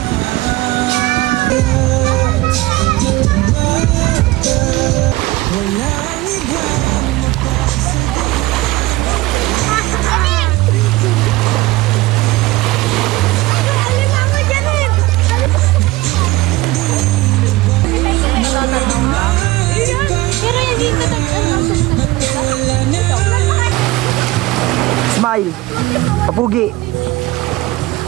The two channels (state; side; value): quieter; left; 19.1 dB